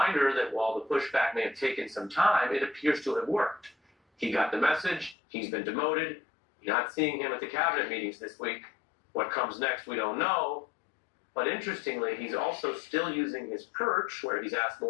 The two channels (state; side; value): drops out; right; at 5.2 s